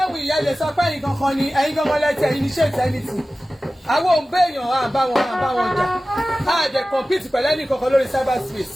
wù ìyá lè sọ pé ẹ̀yin kankan ni ẹ̀yin kankan lẹ́tẹ̀ ẹ̀yin ní ṣe ìtẹ́nìtì àwọn òun béèyàn à bá wọn jà á dẹ̀ compete pẹ̀lú ẹnì kankan lórí cyber space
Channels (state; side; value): normal; both; correlation 0.96